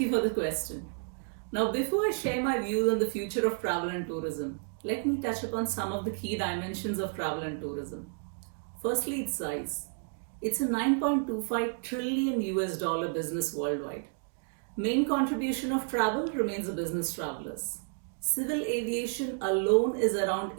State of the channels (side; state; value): left; silent; 57 dB below the other